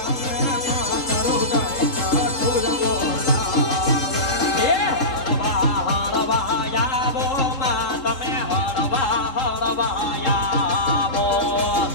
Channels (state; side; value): late; right; 3.7 ms